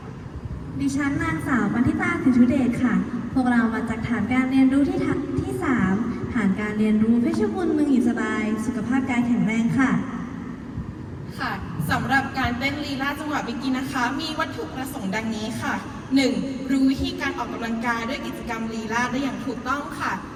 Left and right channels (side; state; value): both; identical; correlation 1.00